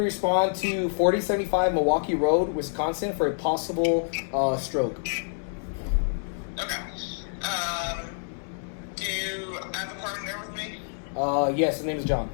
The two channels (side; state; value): right; silent; 60 dB below the other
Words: respond to 4075 Milwaukee Road, Wisconsin for a possible stroke. Okay. Do I have a partner there with me? Yes, his name is John.